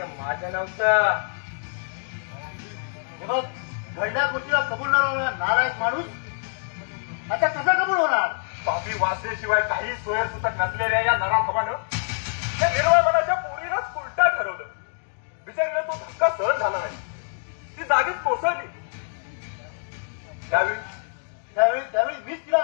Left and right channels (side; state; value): right; silent; 59 dB below the other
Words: माझं नव्हतं. मग घडल्या गोष्टीला कबूल न होणार नारायण माणूस आता कसा कबूल होणार? पापी वाचल्याशिवाय काही सोयरसुतक नसलेल्या या नराधमानं या निर्मळ मनाच्या पोरीलाच उलटा ठरवलं. बिचारीला तो धक्का सहन झाला नाही. ती जागीच कोसळली. त्यावेळी मीच तिला